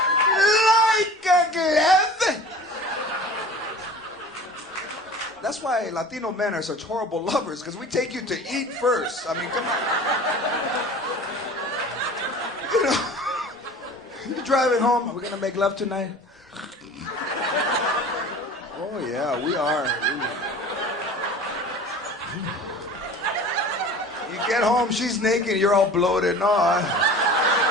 Like a glove. That's why Latino men are such horrible lovers, because we take you to eat first. I mean, come on. You know, you're driving home. Are we gonna make love tonight? Oh yeah, we are. You get home, she's naked, you're all bloated. No,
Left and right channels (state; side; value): normal; both; correlation 0.40